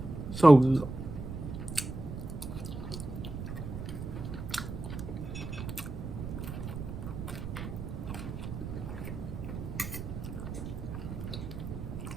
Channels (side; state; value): right; noise; rumble, 7 dB below the sound